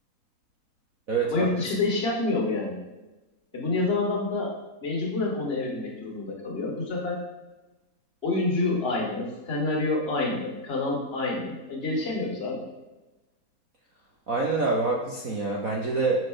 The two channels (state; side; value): late; left; 4.1 ms